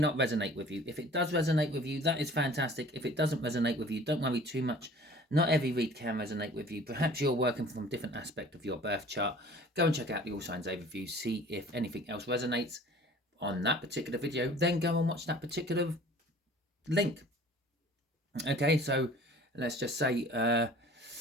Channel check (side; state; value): both; normal; correlation 0.48